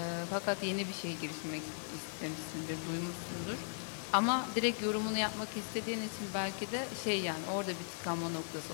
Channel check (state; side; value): silent; right; digital silence